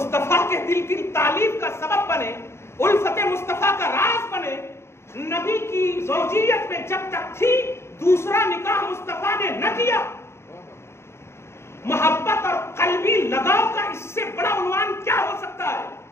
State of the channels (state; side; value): late; right; 0.13 ms